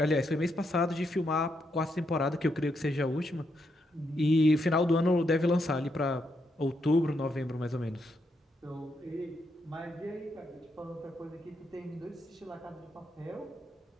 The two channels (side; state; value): both; normal; correlation 0.80